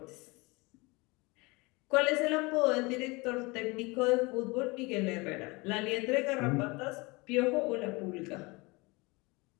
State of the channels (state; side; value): quieter; right; 25.4 dB